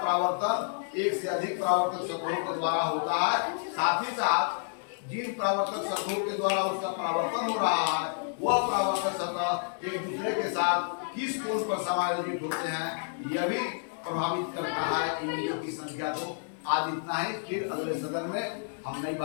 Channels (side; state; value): right; silent; digital silence